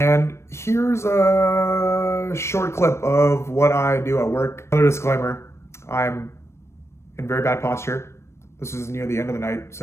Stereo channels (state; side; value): late; right; 0.13 ms